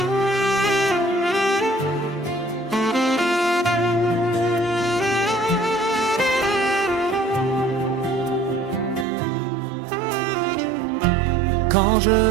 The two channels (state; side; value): drops out; left; at 9.1 s